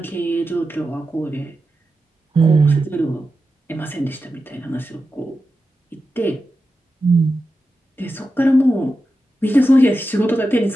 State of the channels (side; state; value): both; normal; correlation 0.91